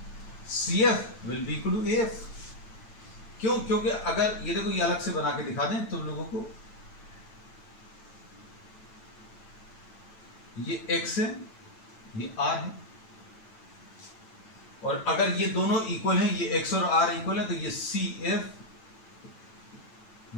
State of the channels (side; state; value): right; late; 9.0 ms